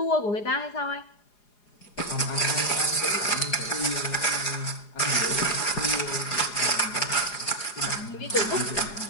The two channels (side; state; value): right; late; 4.9 ms